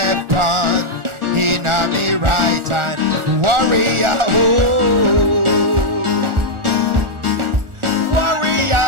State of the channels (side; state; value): left; late; 1.4 ms